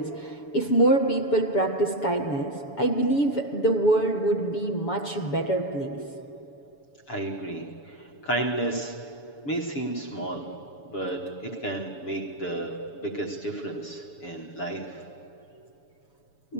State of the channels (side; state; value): right; late; 7.0 ms